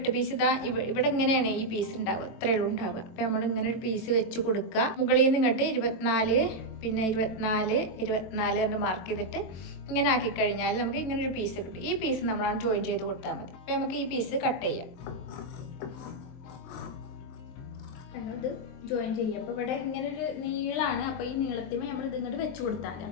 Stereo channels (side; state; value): right; late; 23 ms